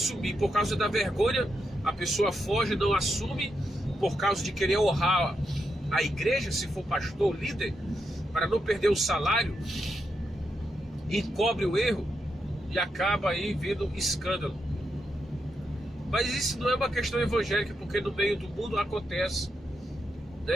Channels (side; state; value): both; normal; correlation 0.84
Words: por causa da vergonha. A pessoa foge, não assume por causa de querer honrar a igreja, se for pastor, líder, para não perder o salário, encobre o erro e acaba aí vindo escândalo. Mas isso não é uma questão evangélica, porque no meio do mundo acontece,